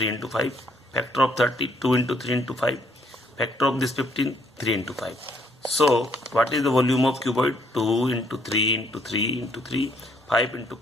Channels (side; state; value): both; normal; correlation 0.68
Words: into 5. Factor of 30, 2 into 3 into 5. Factor of this 15, 3 into 5. So what is the volume of cuboid? 2 into 3 into 3 into 3, 5 into